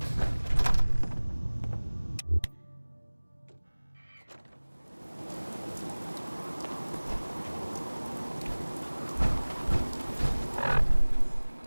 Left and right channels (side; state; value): both; inverted; correlation -1.00